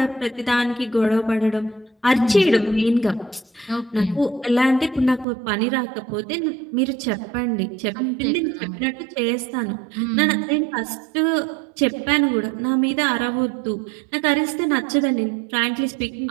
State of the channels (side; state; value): left; drops out; at 5.2 s